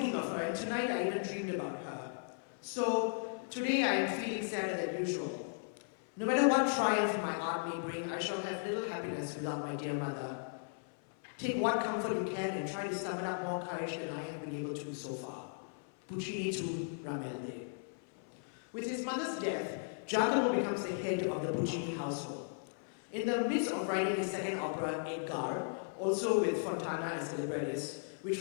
of her, and tonight I even dreamed about her. So today I am feeling sadder than usual. No matter what triumph my art may bring, I shall have little happiness without my dear mother. Take what comfort you can and try to summon up more courage than I have been able to so far. Puccini to Ramelde. With his mother's death, Giacomo becomes the head of the Puccini household. In the midst of writing his second opera, Edgar, also with Fontana as the librettist, which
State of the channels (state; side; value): silent; right; 53 dB below the other